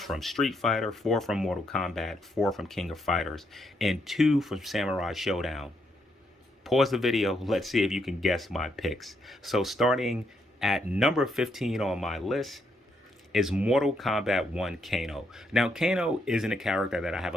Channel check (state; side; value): normal; both; correlation 0.76